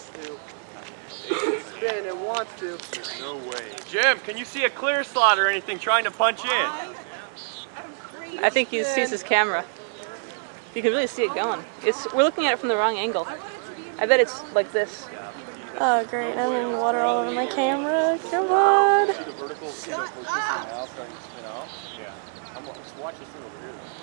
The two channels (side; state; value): left; silent; digital silence